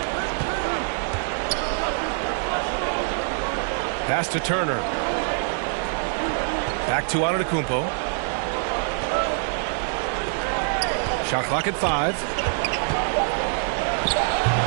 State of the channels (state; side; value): silent; left; digital silence